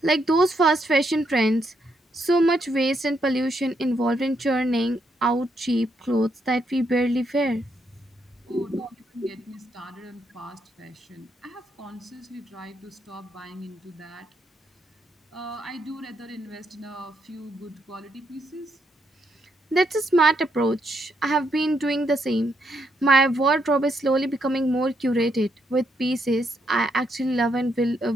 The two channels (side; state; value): both; normal; correlation 0.77